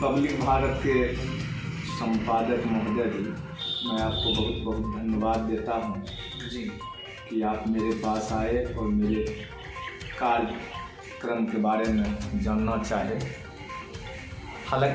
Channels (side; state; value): both; identical; correlation 1.00